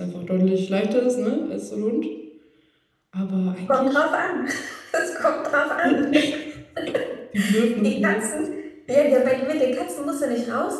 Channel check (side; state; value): both; identical; correlation 1.00